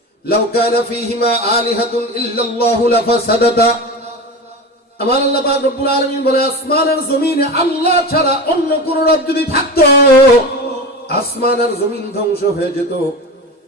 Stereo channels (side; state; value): both; normal; correlation 0.27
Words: লাউ কানা ফীহিমা আলিহাতুন ইল্লাল্লাহু লাফাসাদাতা, আমার আল্লাহ পাক রব্বুল আলামিন বলে আসমান আর জমিনে আল্লাহ ছাড়া অন্য কোন রব যদি থাকতো আসমান আর জমিন ধ্বংস হয়ে যেত,